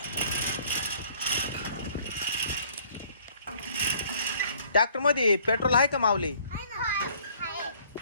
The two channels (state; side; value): inverted; both; correlation -0.57